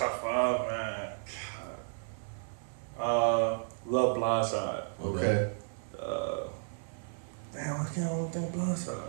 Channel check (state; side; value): silent; left; 56 dB below the other